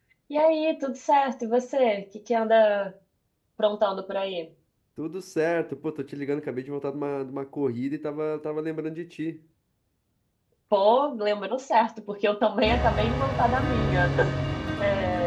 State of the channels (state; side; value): identical; both; correlation 1.00